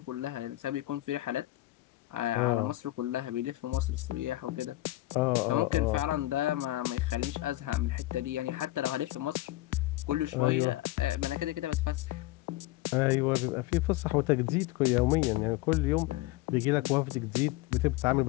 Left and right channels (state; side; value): quieter; right; 17.5 dB